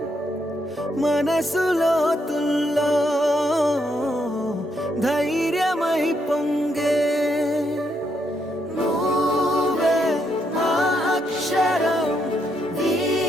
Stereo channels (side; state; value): both; normal; correlation 0.77